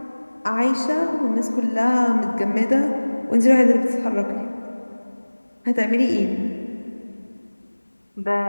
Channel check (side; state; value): both; inverted; correlation -1.00